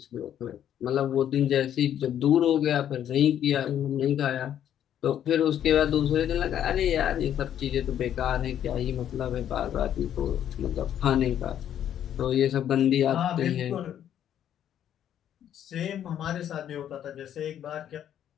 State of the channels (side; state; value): right; quieter; 10.3 dB